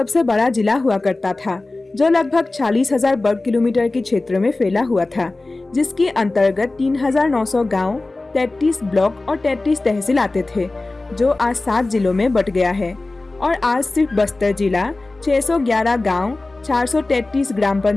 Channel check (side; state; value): right; quieter; 3.1 dB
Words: बड़ा जिला हुआ करता था, जो लगभग 40,000 वर्ग किलोमीटर के क्षेत्र में फैला हुआ था, जिसके अंतर्गत 3,900 गांव, 33 ब्लॉक और 33 तहसील आते थे, जो आज 7 जिलों में बट गया है। और आज सिर्फ बस्तर जिला 611 गांव, 433 ग्राम